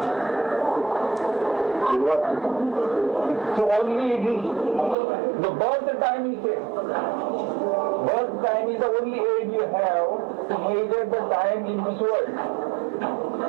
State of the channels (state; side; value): drops out; left; at 5.0 s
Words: So only it is the birth time is there. Birth time is the only aid you have to measure the time in this world.